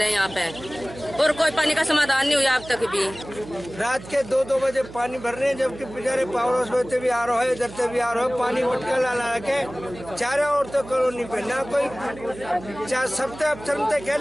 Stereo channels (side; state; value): right; noise; hum, 16 dB below the sound